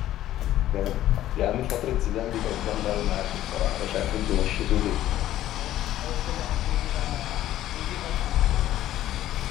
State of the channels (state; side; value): quieter; right; 13.3 dB